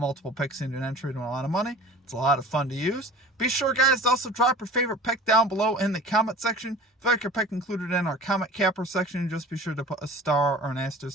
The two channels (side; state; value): both; normal; correlation 0.42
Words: picks into an entry to win a lot of money. It's a lot of fun to use. Be sure, guys, to also drop your favorite pick down below in the comment section. If you like your pick included in our comment capper section, just be sure to put a star or an